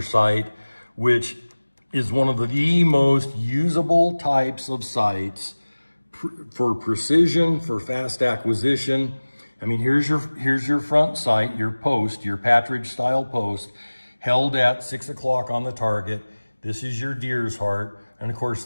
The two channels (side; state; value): both; inverted; correlation -1.00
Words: sight, which is one of the most usable types of sights for precision, for fast acquisition. I mean, here's your front sight, your post, your partridge style post, held at 6 o'clock on the target. This is your deer's heart. And of course,